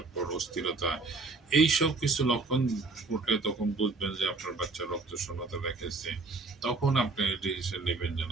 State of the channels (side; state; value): left; quieter; 3.7 dB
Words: অস্থিরতা, এইসব কিছু লক্ষণ উঠলে তখন বুঝবেন যে আপনার বাচ্চা রক্ত শূন্যতা দেখেছে। তখন আপনি ডিসিশন নেবেন যে